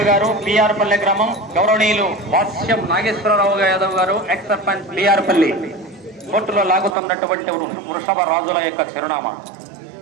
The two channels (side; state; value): left; drops out; at 7.0 s